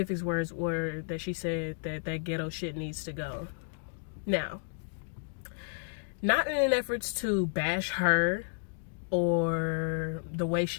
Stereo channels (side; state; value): right; silent; digital silence